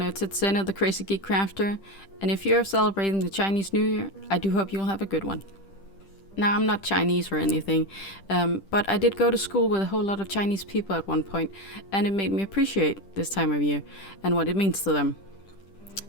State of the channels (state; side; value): late; right; 10 ms